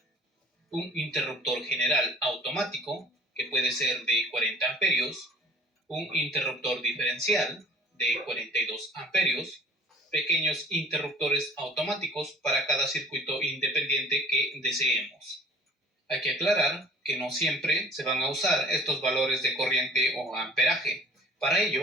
Un interruptor general automático, que puede ser de 40 amperios, un interruptor diferencial de 42 amperios, pequeños interruptores automáticos para cada circuito independiente que deseemos. Hay que aclarar que no siempre se van a usar estos valores de corriente o amperaje. Para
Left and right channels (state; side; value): normal; both; correlation 0.49